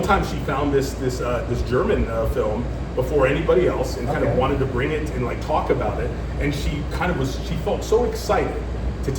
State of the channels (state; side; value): identical; both; correlation 1.00